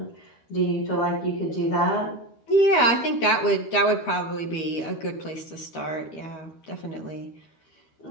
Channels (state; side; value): late; right; 13 ms